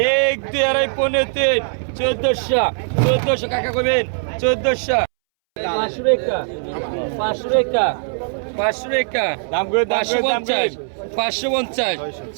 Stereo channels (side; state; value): left; silent; 64 dB below the other